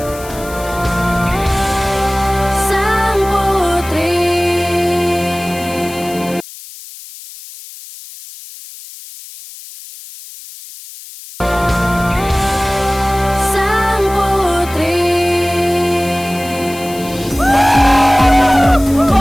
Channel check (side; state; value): left; noise; hiss, 16 dB below the sound